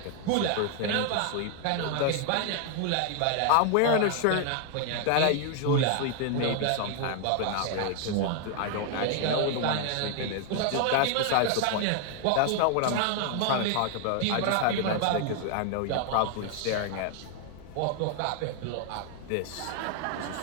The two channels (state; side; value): different; both; correlation 0.00